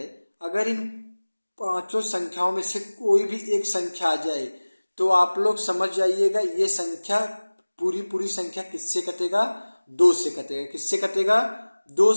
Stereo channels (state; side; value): inverted; both; correlation -1.00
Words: अगर इन पांचों संख्याओं में से कोई भी एक संख्या आ जाए तो आप लोग समझ जाइएगा ये संख्या पूरी संख्या किससे कटेगा, 2 से कटेगा। किससे कटेगा, 2